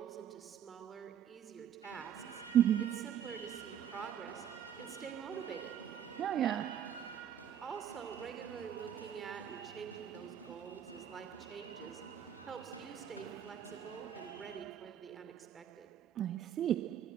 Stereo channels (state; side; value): quieter; left; 9.5 dB